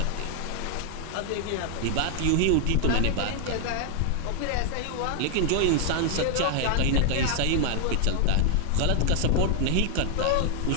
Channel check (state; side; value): different; both; correlation 0.00